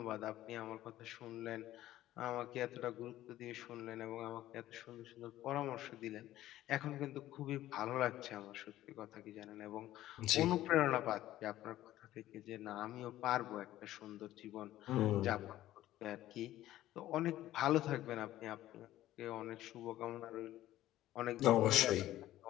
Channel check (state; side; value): quieter; right; 14.3 dB